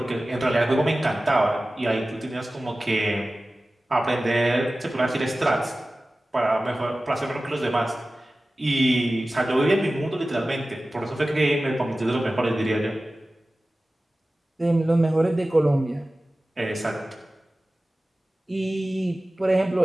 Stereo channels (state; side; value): normal; both; correlation 0.96